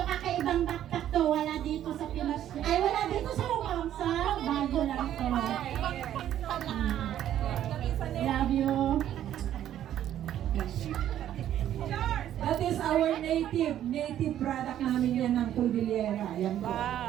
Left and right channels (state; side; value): quieter; left; 11.3 dB